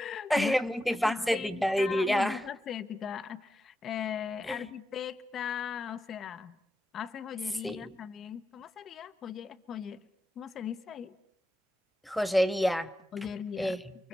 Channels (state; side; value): normal; both; correlation 0.89